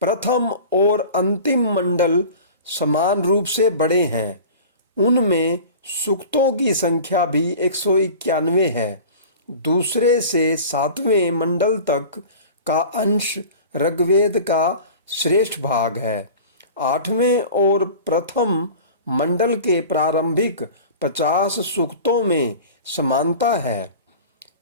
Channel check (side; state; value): both; inverted; correlation -0.38